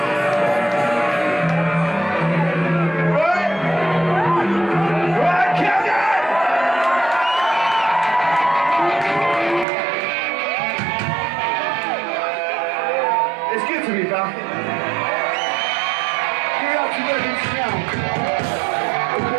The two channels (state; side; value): drops out; left; at 9.7 s